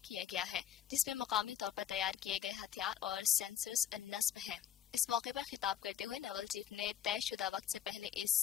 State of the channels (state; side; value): quieter; right; 9.9 dB